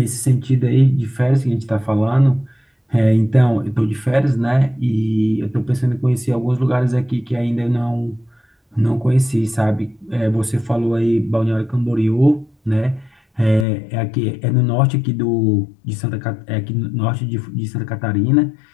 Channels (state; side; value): drops out; right; at 13.7 s